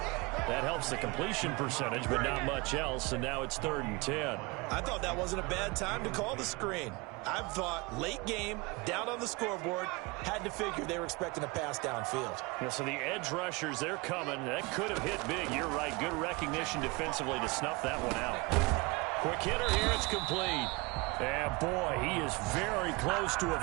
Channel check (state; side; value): quieter; left; 26.2 dB